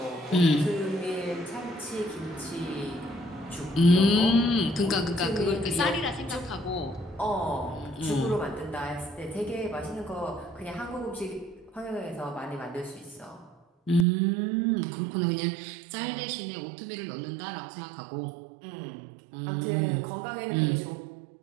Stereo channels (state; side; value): drops out; left; at 14.1 s